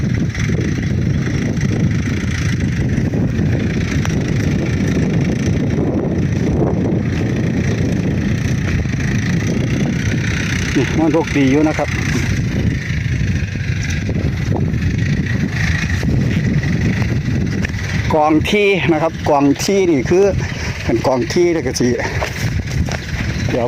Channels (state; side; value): identical; both; correlation 1.00